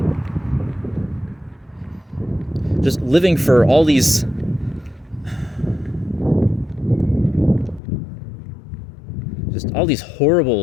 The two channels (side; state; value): right; drops out; at 7.8 s